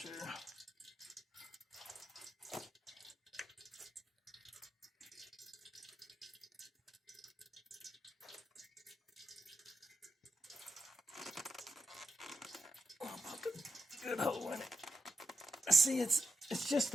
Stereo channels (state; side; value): normal; both; correlation 0.88